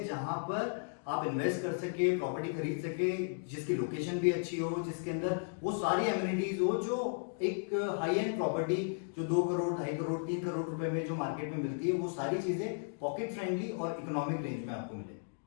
जहां पर आप इन्वेस्ट कर सके, प्रॉपर्टी खरीद सके, जिसकी लोकेशन भी अच्छी हो, जिसके अंदर वो सारी एमिनिटीज हो जो एक हाई एंड प्रॉपर्टी जो 2 करोड़, 2.5 करोड़, 3 करोड़ रुपए में जो मार्केट में मिलती है, वो सारी चीजें पॉकेट फ्रेंडली और इकोनॉमिक रेंज में आपको मिले।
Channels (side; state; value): right; silent; digital silence